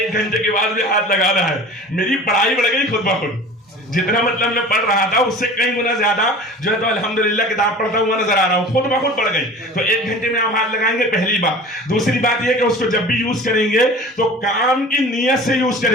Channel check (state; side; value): normal; both; correlation 0.40